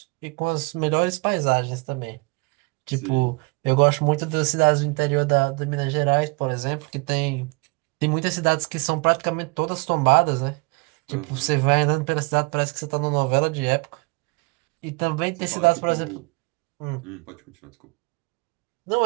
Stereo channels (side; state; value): left; quieter; 29.5 dB